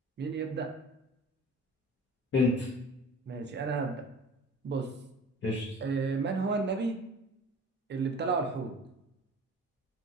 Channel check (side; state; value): both; normal; correlation 0.43